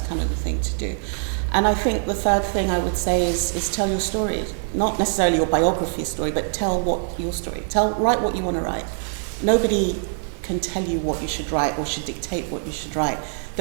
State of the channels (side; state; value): left; silent; digital silence